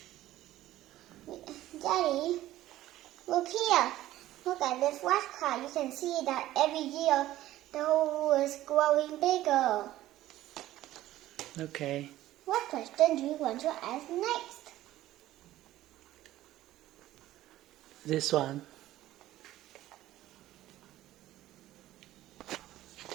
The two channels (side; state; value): left; quieter; 14.7 dB